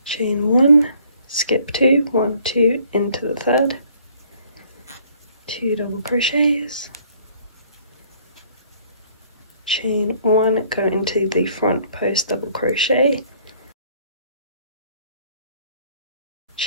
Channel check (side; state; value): both; inverted; correlation -0.60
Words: chain 1, skip 2, 1, 2, into the third, 2 double crochets, chain 1, go into the front post double crochet,